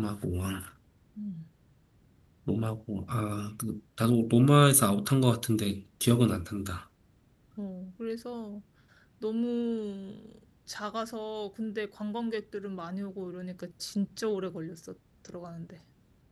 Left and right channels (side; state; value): both; identical; correlation 1.00